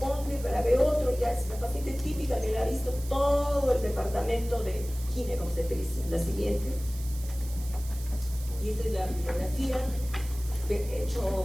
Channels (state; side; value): noise; right; hiss, 16 dB below the sound